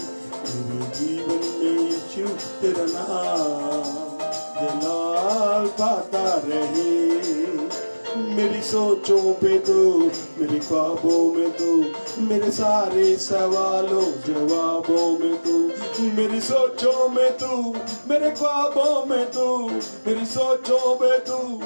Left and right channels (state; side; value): inverted; both; correlation -1.00